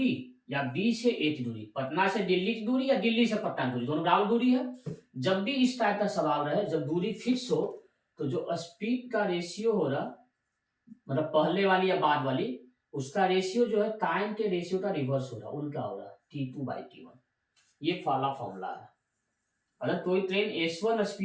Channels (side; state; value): both; identical; correlation 1.00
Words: या बी से ए की दूरी, पटना से दिल्ली की दूरी या दिल्ली से पटना की दूरी, दोनों बराबर दूरी है। जब भी इस टाइप का सवाल रहे जब दूरी फिक्स हो तो जो स्पीड का रेशियो हो रहा मतलब पहले वाली या बाद वाली उसका रेशियो जो है टाइम के रेशियो का रिवर्स हो रहा, उल्टा हो रहा T2/T1, ये वाला फॉर्मूला है। अगर कोई ट्रेन S1